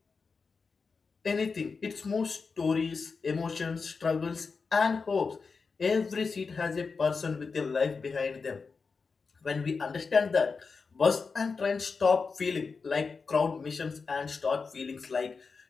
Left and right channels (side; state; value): right; quieter; 4.8 dB